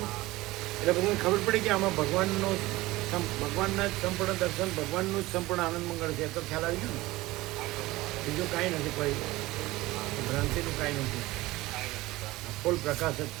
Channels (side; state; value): left; quieter; 19.0 dB